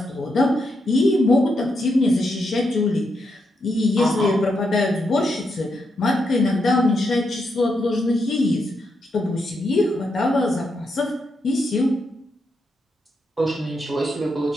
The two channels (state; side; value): normal; both; correlation 0.82